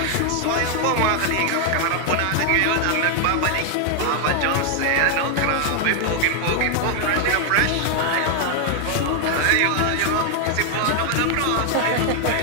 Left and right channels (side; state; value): both; different; correlation 0.00